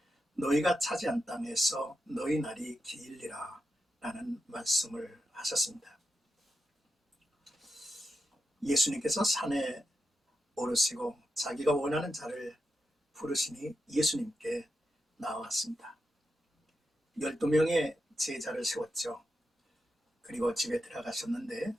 너희가 차지한 땅에서 너희 날이 길리라 라는 말씀을 하셨습니다. 예수님께서 산에 오르시고 자기가 원하는 자를 부르시니 예수님께 나왔습니다. 12명의 제자를 세웠죠. 그리고 집에 들어가셨는데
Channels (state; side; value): normal; both; correlation 0.87